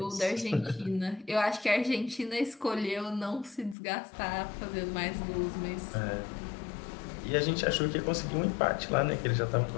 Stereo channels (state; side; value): drops out; right; at 3.8 s